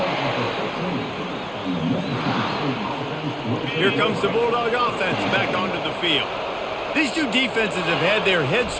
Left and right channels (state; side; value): identical; both; correlation 1.00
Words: Here comes the Bulldog offense back onto the field. These two defenses have had their heads